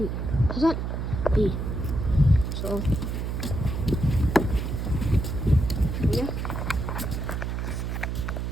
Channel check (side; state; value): right; noise; hum, 2 dB below the sound